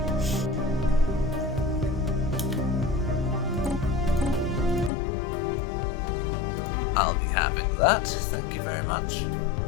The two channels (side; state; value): right; drops out; at 4.9 s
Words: I'll be having that. Thank you very much.